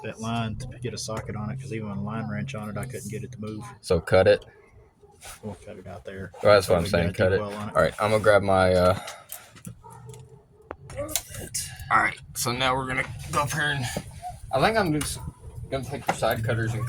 that line to get a socket on it because even with a line wrench on it, I couldn't get it to move. So cut it. We'll cut it out there. Well, that's what I'm saying. Cut it. All right, I'm gonna grab my. All right, so now we're gonna go up here and I think I'm just gonna take the side cutters and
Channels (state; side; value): identical; both; correlation 1.00